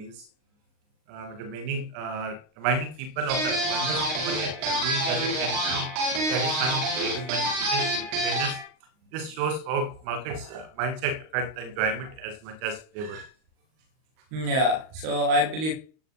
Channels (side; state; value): left; late; 38 ms